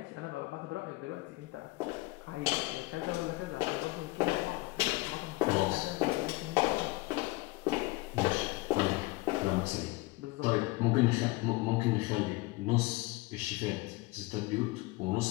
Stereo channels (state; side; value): quieter; right; 22.2 dB